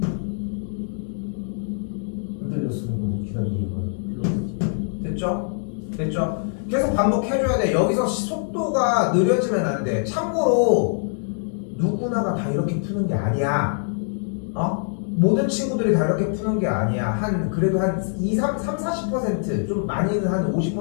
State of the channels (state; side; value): silent; right; digital silence